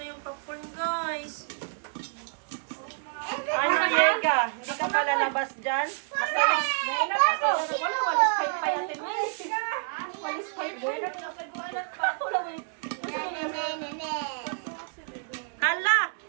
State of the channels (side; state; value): left; silent; 59 dB below the other